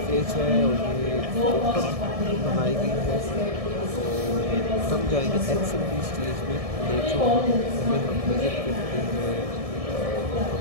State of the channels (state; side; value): late; left; 1.7 ms